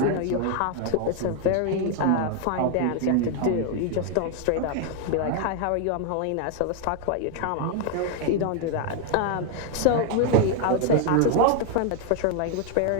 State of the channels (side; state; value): both; different; correlation 0.01